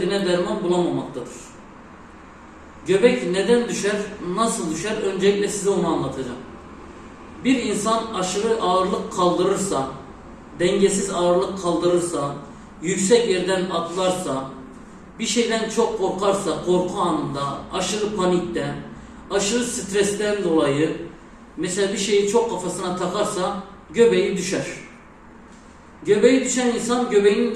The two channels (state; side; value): identical; both; correlation 1.00